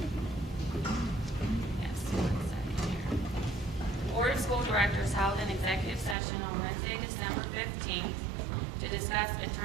1 second here. The Board of School Directors held an executive session on Wednesday, December 15th to discuss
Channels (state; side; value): drops out; left; at 6.2 s